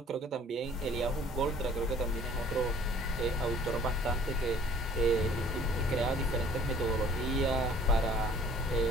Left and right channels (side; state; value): both; normal; correlation 0.54